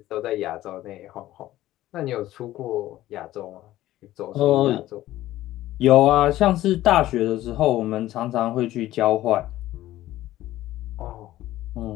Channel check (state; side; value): quieter; right; 15.0 dB